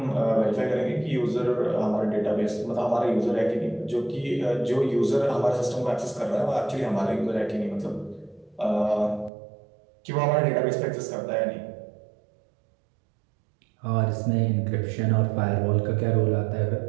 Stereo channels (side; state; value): left; drops out; at 9.3 s